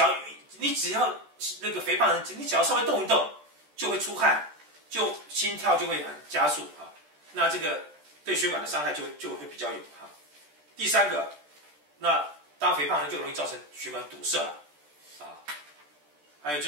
只要那个肥胖人，你只要稍微动一动，就会出汗，就心跳就会很加速啊。那这个对血管的伤害就会比较有哈。第三个，那当肥胖人就容易造成血管堵塞了啊。还有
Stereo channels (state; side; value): late; left; 13 ms